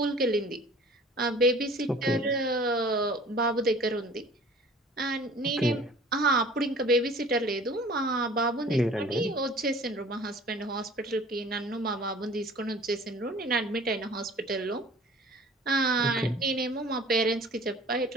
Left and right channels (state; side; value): normal; both; correlation 0.47